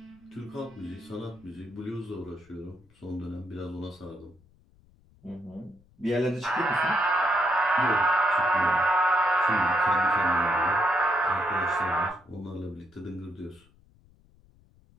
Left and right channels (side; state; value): left; noise; rumble, 29 dB below the sound